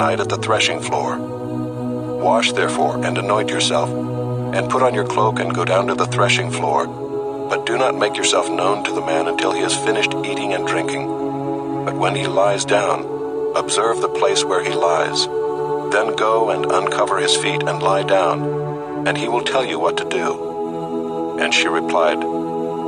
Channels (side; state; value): both; identical; correlation 1.00